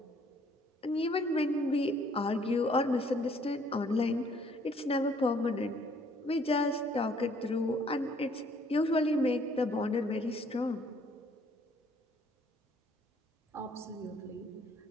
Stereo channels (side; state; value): both; normal; correlation 0.62